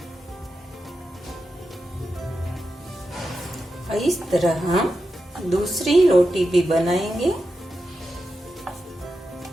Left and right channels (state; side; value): normal; both; correlation 0.89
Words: इस तरह हम दूसरी रोटी भी बनाएंगे।